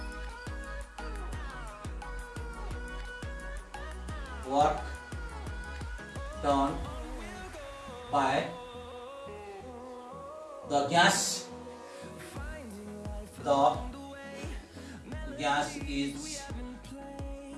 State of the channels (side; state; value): both; identical; correlation 1.00